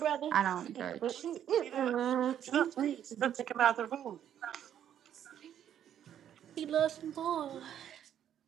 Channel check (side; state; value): left; quieter; 10.0 dB